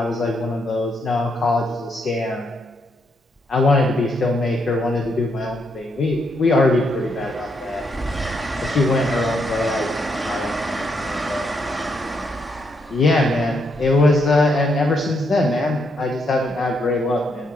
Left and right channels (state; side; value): normal; both; correlation 0.77